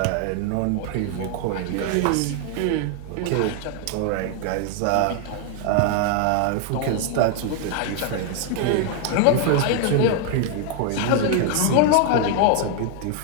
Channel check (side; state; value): both; different; correlation 0.00